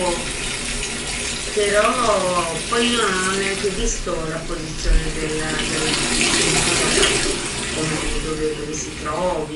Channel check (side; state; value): both; identical; correlation 1.00